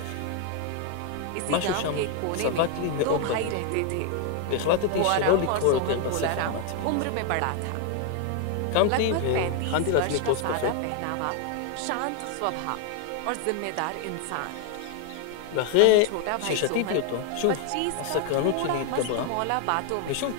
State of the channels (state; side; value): different; both; correlation 0.01